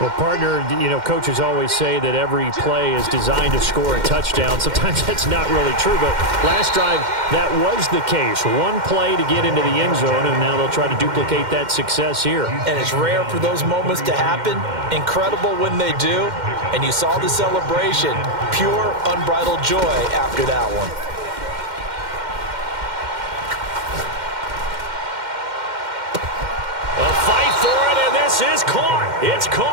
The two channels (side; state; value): left; late; 2.1 ms